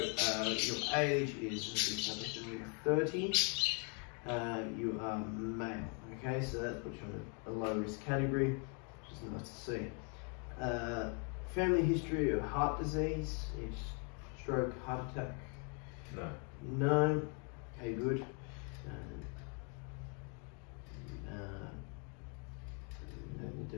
your age is 30. You are male. Okay, so that puts you on a low risk category, which is nice to see. Family history of heart disease, is stroke, heart attack. No. No. Okay, good. Don't need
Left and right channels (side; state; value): right; quieter; 38.0 dB